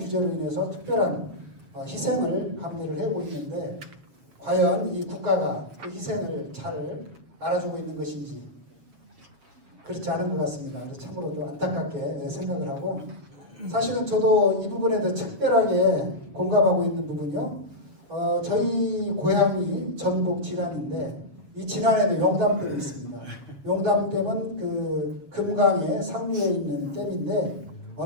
인해서 특별한 희생을 감내를 해오고 있는데 과연 이 국가가 그 희생을 잘 알아주고 있는 것인지 그렇지 않은 것 같습니다. 그래서 참으로 좀 안타깝게 생각을 하고 사실은 저도 이 부분에 대해 특별하게 공감하고 있는 부분이요. 저희 고향이 전북 진안인데 이 진안에도 용담댐이 있습니다. 용담댐은 그 금강의 상류에 있는 댐인데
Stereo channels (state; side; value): late; left; 7.2 ms